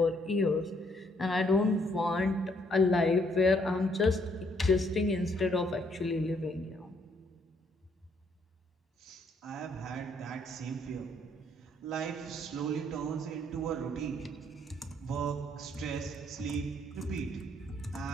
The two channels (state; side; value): normal; both; correlation 0.69